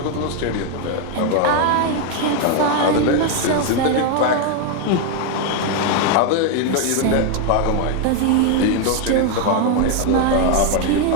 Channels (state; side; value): different; both; correlation 0.01